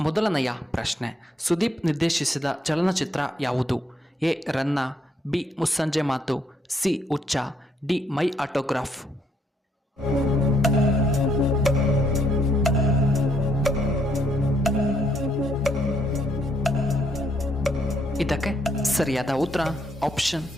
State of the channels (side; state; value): both; normal; correlation 0.72